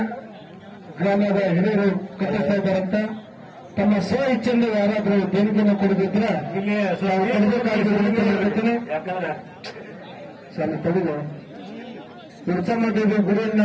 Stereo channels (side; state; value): both; identical; correlation 1.00